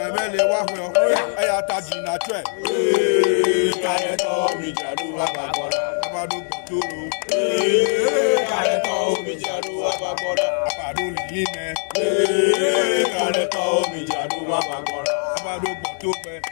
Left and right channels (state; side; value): silent; right; 65 dB below the other